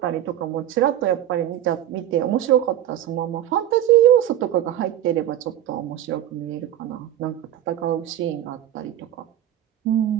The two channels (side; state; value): left; quieter; 11.8 dB